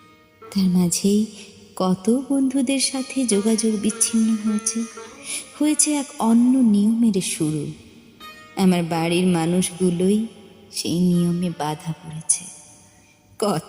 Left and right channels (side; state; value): both; identical; correlation 1.00